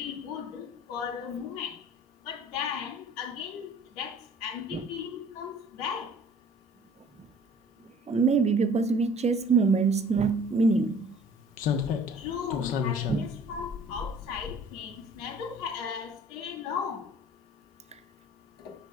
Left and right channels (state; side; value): normal; both; correlation 0.50